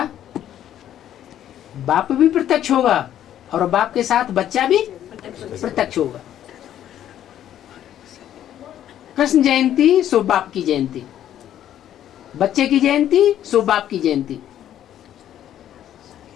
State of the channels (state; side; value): quieter; right; 11.2 dB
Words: बाप भी प्रत्यक्ष होगा और बाप के साथ बच्चा भी प्रत्यक्ष होगा। कृष्ण जयंती सो बाप की जयंती, बच्चे की जयंती सो बाप की जयंती।